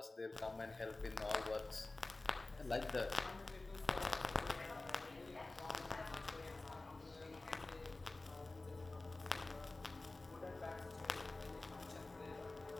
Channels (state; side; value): quieter; right; 3.1 dB